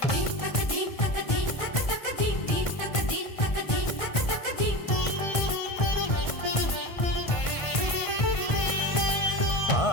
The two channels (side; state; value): right; late; 1.5 ms